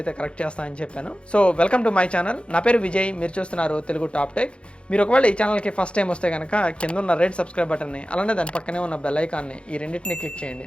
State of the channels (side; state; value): right; late; 0.058 ms